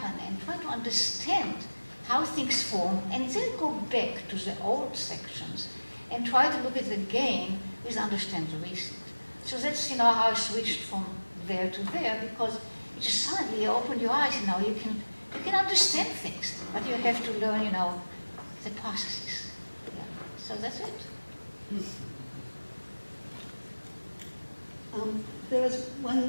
and try to understand how things form, and then go back to the old sections and try to look at the game with understand the recent. So that's how I switched from there to there, because it just suddenly opened your eyes. You can understand things, but you have to learn the processes. Yeah. So that's it. There was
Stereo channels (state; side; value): inverted; both; correlation -1.00